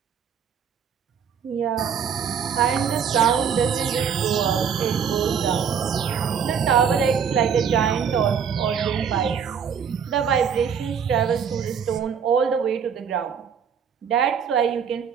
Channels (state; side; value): quieter; left; 7.3 dB